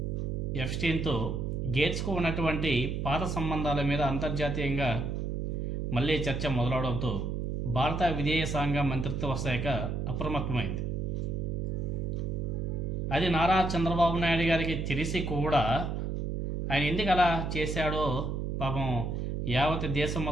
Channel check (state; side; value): noise; right; hum, 2 dB below the sound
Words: ఎప్స్టీన్తో గేట్స్కు ఉన్నటువంటి పాత సంబంధాల మీద అంతర్జాతీయంగా మళ్ళీ చర్చ మొదలవడంతో భారత విదేశాంగ మంత్రిత్వ శాఖ అప్రమత్తమైంది. అది నారా చంద్రబాబు నాయుడు గారికి తెలిసి కూడా ఆయన ఎందుకు అలా చేశాడో పాపం యావత్ దేశం